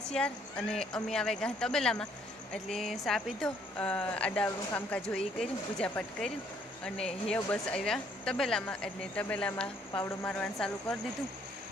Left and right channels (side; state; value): both; normal; correlation 0.65